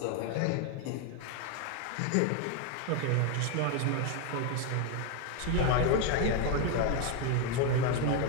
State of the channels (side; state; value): both; different; correlation 0.01